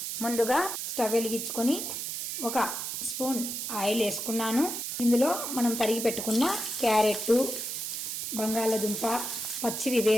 ముందుగా స్టవ్ వెలిగించుకొని ఒక స్పూన్ ఆయిల్ వేసుకున్నాను. ఇందులో మనం తరిగి పెట్టుకున్న క్యారెట్, బంగాళదుంప, పచ్చివి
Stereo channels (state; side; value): noise; right; hiss, 4 dB below the sound